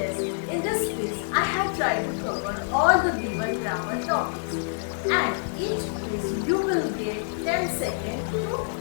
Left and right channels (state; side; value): silent; right; 61 dB below the other